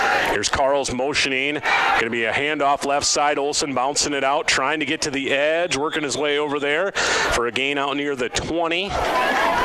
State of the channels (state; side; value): identical; both; correlation 1.00